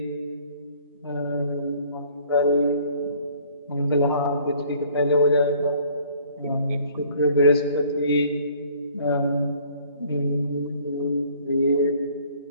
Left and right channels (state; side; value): inverted; both; correlation -0.56